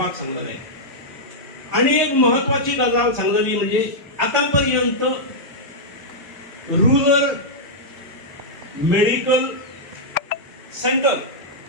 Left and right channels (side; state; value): both; normal; correlation -0.08